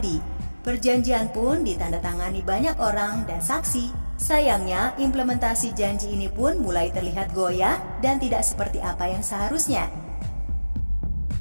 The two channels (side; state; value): both; inverted; correlation -1.00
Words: Perjanjian pun ditandatangani banyak orang dan saksi. Sayangnya, implementasi janji ini pun mulai terlihat goyah dan tidak seperti apa yang seharusnya.